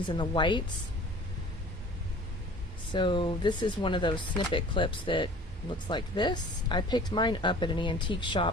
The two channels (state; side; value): normal; both; correlation 0.46